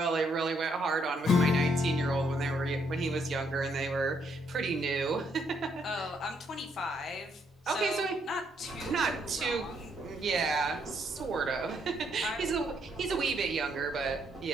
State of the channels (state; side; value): normal; both; correlation 0.72